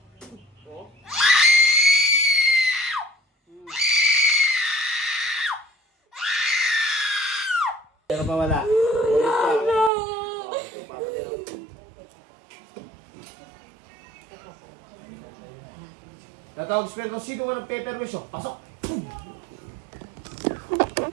Oh. Pero pa wala. Tatawag spell kung sino man ang peperwisyo. Pasok!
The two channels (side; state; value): left; drops out; at 9.9 s